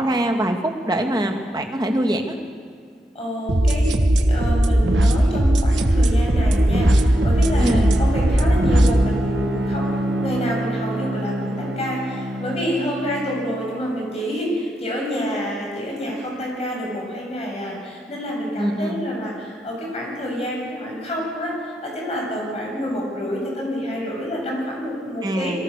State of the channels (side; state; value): both; normal; correlation 0.84